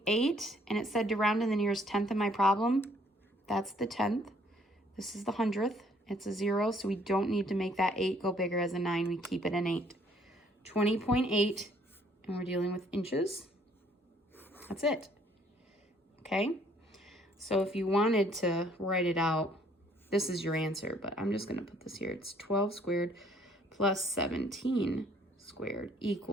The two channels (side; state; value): both; normal; correlation 0.63